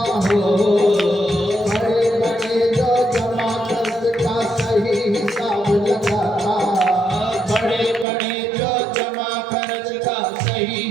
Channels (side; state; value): left; drops out; at 8.1 s